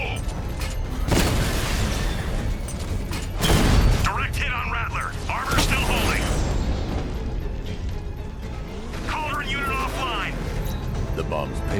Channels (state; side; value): identical; both; correlation 1.00